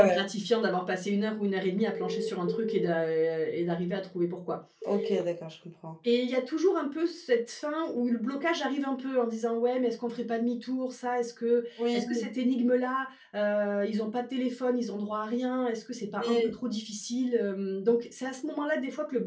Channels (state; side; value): identical; both; correlation 1.00